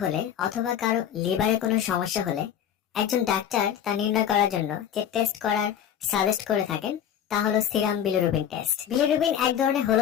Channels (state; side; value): quieter; right; 9.4 dB